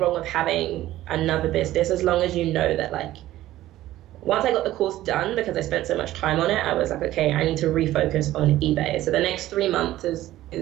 with having another business, as long as you know that, like, once I got the course done, because I spent so much time on it, I was like, okay, I need to refocus on eBay. So the next 3 months is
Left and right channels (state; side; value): quieter; left; 14.8 dB